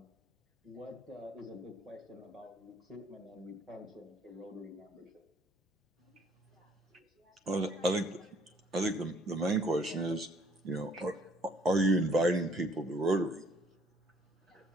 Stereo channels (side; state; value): both; normal; correlation 0.62